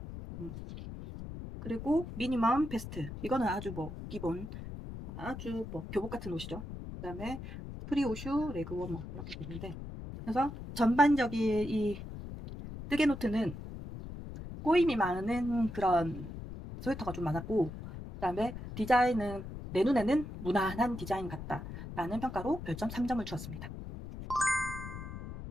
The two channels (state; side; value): noise; left; rumble, 10 dB below the sound